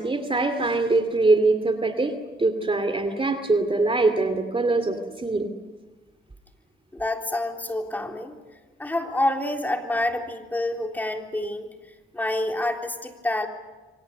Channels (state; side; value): normal; both; correlation 0.73